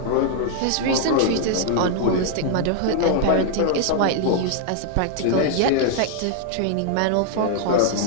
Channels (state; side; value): different; both; correlation 0.00